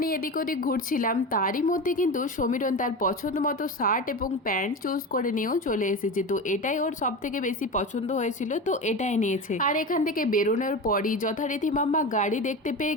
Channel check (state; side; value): normal; both; correlation 0.25